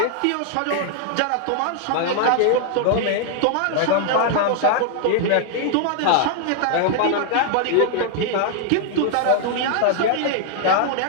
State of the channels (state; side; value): different; both; correlation 0.00